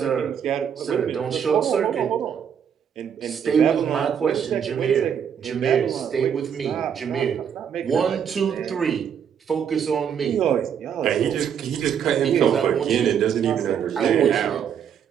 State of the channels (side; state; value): left; quieter; 8.1 dB